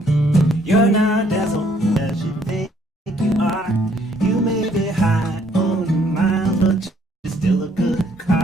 You're not as old as you think you are. You may be high on the miles, but you're still a good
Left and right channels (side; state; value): both; normal; correlation 0.65